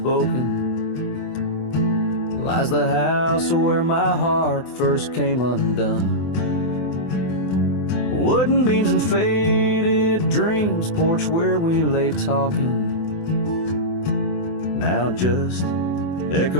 lies the house where my heart first came undone. Wooden beams and faded dreams, porch where we lay talking, now just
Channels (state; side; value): late; right; 24 ms